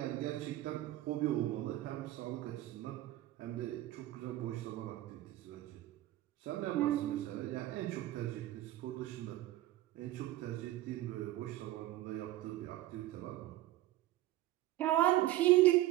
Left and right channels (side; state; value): left; quieter; 15.6 dB